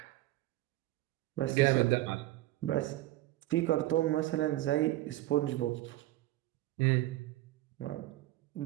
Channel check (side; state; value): left; quieter; 16.5 dB